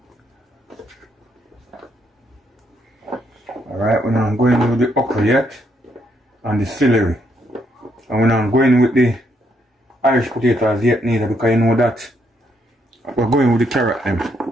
Alright, we're not going with the okra yet and the celery. And we're not going with the Irish potatoes yet neither, because you know that we're going with the carrot them.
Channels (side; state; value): both; normal; correlation 0.74